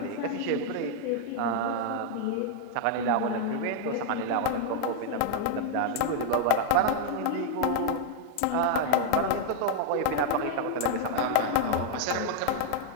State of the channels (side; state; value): both; different; correlation 0.00